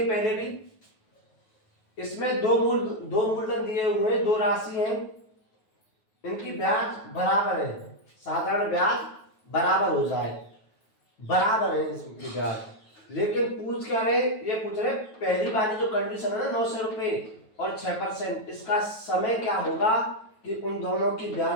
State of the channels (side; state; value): right; late; 9.3 ms